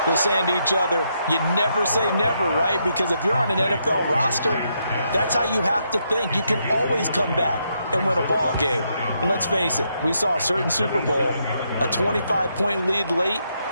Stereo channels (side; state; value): both; inverted; correlation -0.78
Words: they're saying to each other, you never say never, right? Because if you're on an NFL roster, that's how you have to think. You can always come back and win a ball game. And let's face it, we saw a certain Super Bowl, a 25-point lead late,